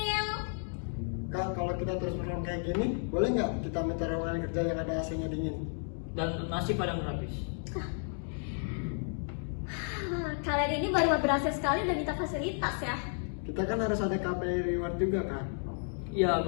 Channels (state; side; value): silent; right; 55 dB below the other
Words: Kak, kalau kita terus perform kayak gini, boleh nggak kita minta ruangan kerja yang ada AC-nya dingin? Dan nasi padang gratis. Kalian ini baru berhasil sekali udah minta fasilitas ya. Kita kan harus ada KPI reward juga kan? Iya,